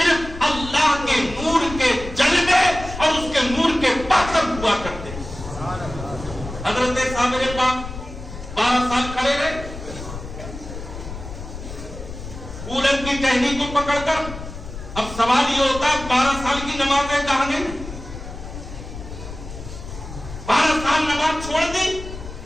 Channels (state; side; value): noise; left; rumble, 11 dB below the sound